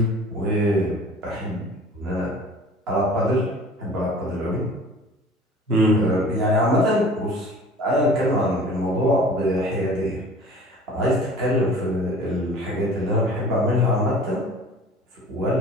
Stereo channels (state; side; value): normal; both; correlation 0.45